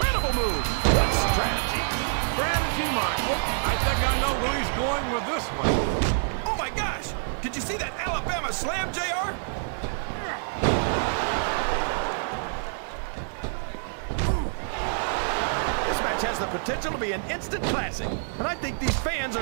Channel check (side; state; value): left; silent; digital silence